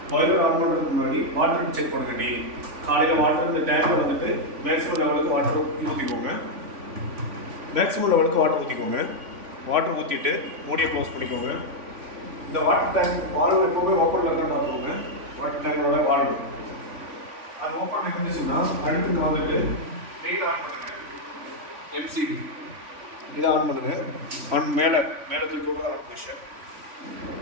boiler on பண்ணுறதுக்கு முன்னாடி water check பண்ணுங்க. டெய்லி காலையில் வாட்டர் இந்த டேங்கில் வந்துட்டு மேக்ஸிமம் லெவலுக்கு வாட்டர் ஊற்றிக்கோங்க. மேக்ஸிமம் லெவலுக்கு வாட்டர் ஊற்றிக்கோங்க. வாட்டர் ஊற்றிட்டு மூடியை க்ளோஸ் பண்ணிக்கோங்க. இந்த வாட்டர் டேங்க் வால்வு எப்போவுமே ஓப்பனில் இருக்குன்னு பார்த்துக்கோங்க. வாட்டர் டேங்கோட வால்வு அது ஓப்பனில் இருந்துச்சுன்னா அடுத்து வந்துட்டு மெயின் ஆன் பண்ணுங்க. எம்சிபி இதை ஆன் பண்ணுங்க. மேலே தூக்கி ஆன் பொசிஷன்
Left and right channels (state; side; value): late; left; 3.5 ms